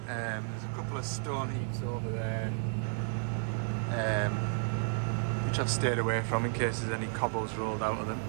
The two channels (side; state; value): left; silent; 56 dB below the other